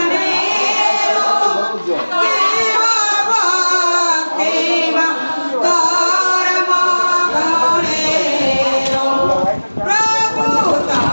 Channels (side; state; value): both; inverted; correlation -1.00